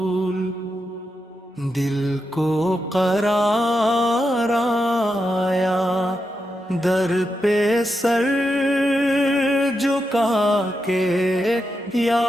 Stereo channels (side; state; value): both; normal; correlation 0.86